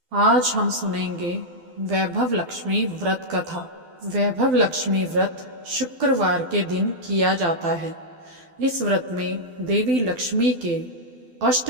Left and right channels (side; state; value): left; late; 12 ms